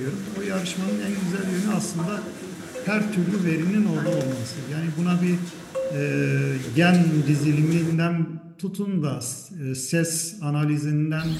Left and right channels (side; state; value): both; identical; correlation 1.00